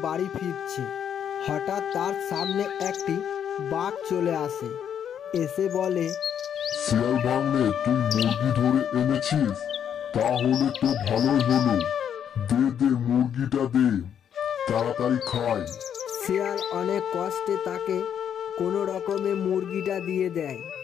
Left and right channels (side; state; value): right; quieter; 8.8 dB